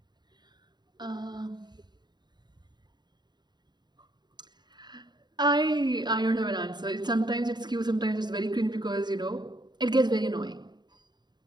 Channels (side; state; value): left; late; 0.21 ms